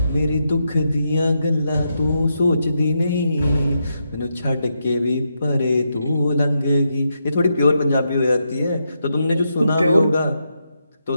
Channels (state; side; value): inverted; both; correlation -0.83